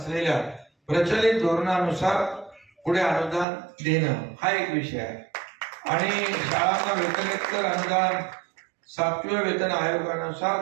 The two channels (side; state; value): left; drops out; at 3.5 s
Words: प्रचलित धोरणानुसार पुढे अनुदान देणं हा एक विषय आहे आणि शाळांना वेतनोत्तर अनुदान 7व्या वेतन